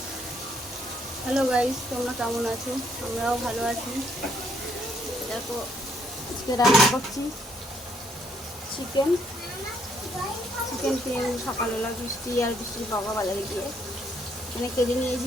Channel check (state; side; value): normal; both; correlation 0.71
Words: hello guys, তোমরা কেমন আছো? আমরাও ভালো আছি। দেখো, আজকে রান্না করছি চিকেন চিকেন কিনে সকালবেলা বৃষ্টির বাবা বাজারে গিয়ে এখানে কেটে